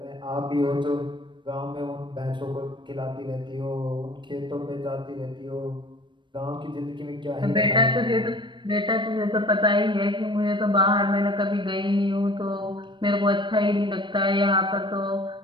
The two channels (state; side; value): late; left; 0.23 ms